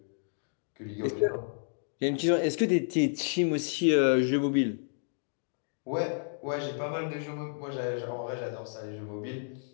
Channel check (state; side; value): silent; right; digital silence